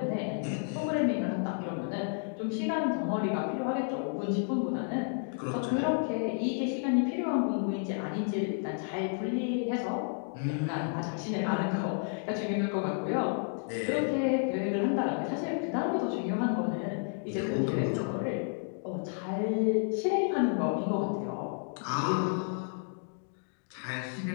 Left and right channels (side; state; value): right; silent; 57 dB below the other